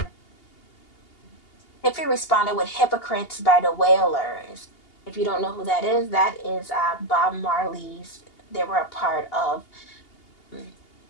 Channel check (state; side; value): late; right; 2.8 ms